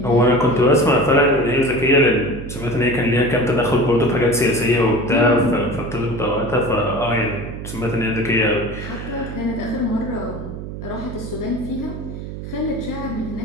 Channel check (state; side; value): noise; right; hum, 9 dB below the sound